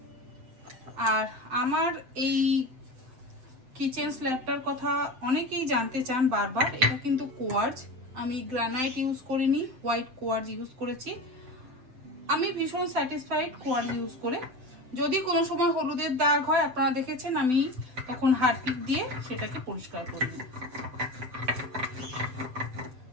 আর আমার এই কিচেন স্ল্যাবটার কথা অনেকেই জানতে চান বারবার। এটা কিন্তু কোয়ার্জ, আমি গ্রানাইট ইউজ করিনি, হোয়াইট কোয়ার্জ ইউজ করেছি। আমি ভীষণ স্যাটিসফাইড কোয়ার্জ ইউজ করে। যদি কোনো সময় হলুদের দাগ হয়, আপনারা দেখেছেন, আমি তখন হারপিক দিয়ে সেটাকে পরিষ্কার করে নিই।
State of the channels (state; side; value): late; left; 7.8 ms